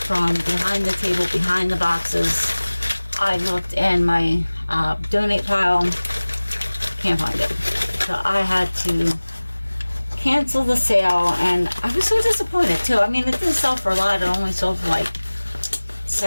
behind the table, behind the boxes. I looked in my donate pile. Can't find it. So I had to cancel the sale, and I was so disappointed too. I mean, it didn't sell for a lot. It only sold for like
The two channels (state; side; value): inverted; both; correlation -1.00